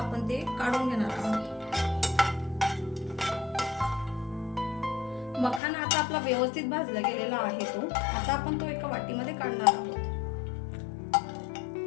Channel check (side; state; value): right; drops out; at 5.6 s